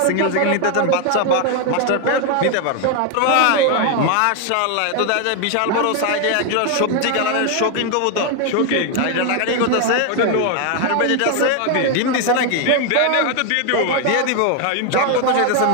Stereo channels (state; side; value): different; both; correlation 0.01